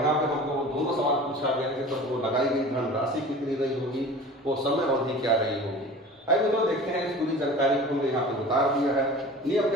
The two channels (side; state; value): both; normal; correlation 0.39